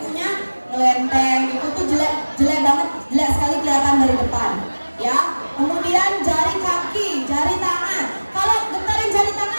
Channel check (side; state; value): both; inverted; correlation -1.00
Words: ngelenteng, itu tuh jelek banget, jelek sekali kelihatan dari depan ya. Kemudian jari kaki, jari tangan. Kalau gentarin jari